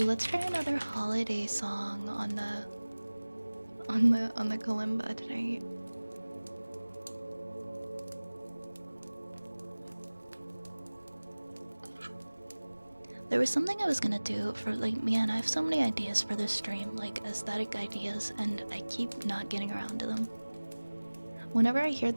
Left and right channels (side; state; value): both; inverted; correlation -1.00